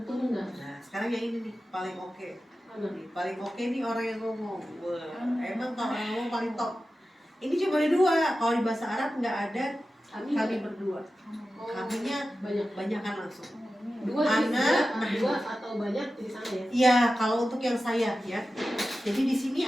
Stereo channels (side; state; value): both; normal; correlation 0.94